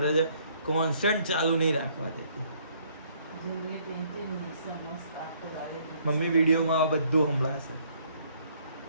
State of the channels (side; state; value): both; inverted; correlation -0.65